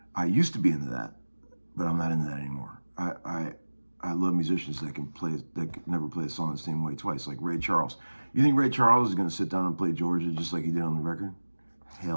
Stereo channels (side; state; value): both; inverted; correlation -1.00